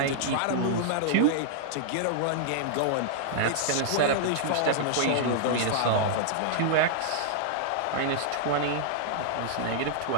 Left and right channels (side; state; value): both; different; correlation -0.01